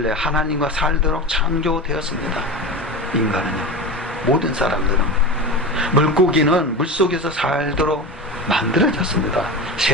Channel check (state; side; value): normal; both; correlation 0.26